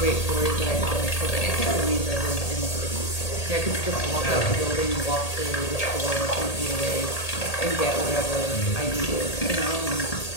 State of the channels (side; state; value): right; late; 1.8 ms